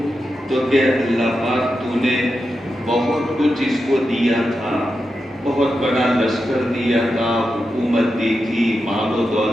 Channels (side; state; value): both; normal; correlation 0.88